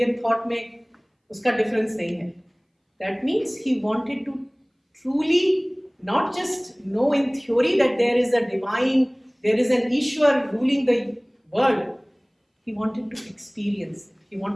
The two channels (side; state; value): both; identical; correlation 1.00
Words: थॉट में उसका डिफरेंस नहीं है। That means he wanted to truly not just know in theory that there is a divine, there is an Ishwar ruling the world. He wanted to experience, he